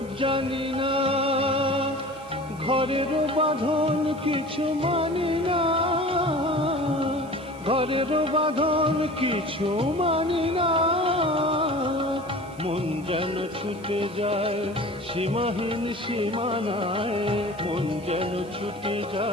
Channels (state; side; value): noise; right; hiss, 25 dB below the sound